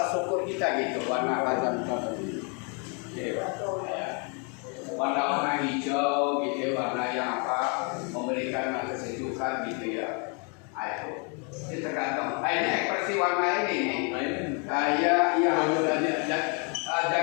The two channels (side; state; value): right; quieter; 36.2 dB